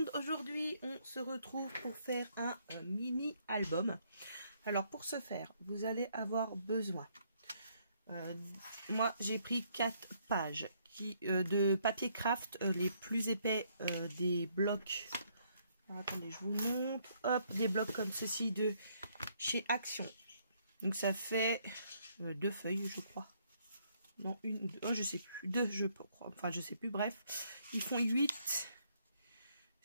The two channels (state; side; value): inverted; both; correlation -0.70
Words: aujourd'hui on se retrouve pour faire un mini album. Alors pour ce faire, vous allez avoir besoin, moi j'ai pris 4 pages de papier craft, les plus épais des blocs. Alors, attendez, je vous montre, hop, des blocs comme ceci de chez Action. Donc ça fait 2 feuilles je crois. Non, une ou deux, oh, je sais plus, 2 je crois, enfin je sais plus, bref. Ils font 8